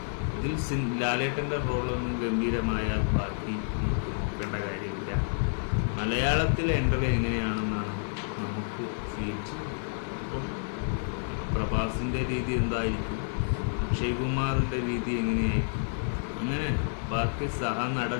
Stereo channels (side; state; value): right; silent; 58 dB below the other